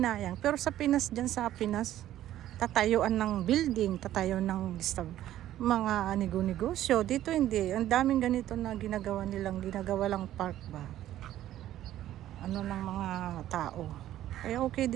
Pero sa Pinas, sa Pinas, tatayuan ng building, ng mga negosyo. Dito hindi. Ang daming ganito na ginagawa lang park ba. Ng mga tao. Kaya okay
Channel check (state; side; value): quieter; left; 13.0 dB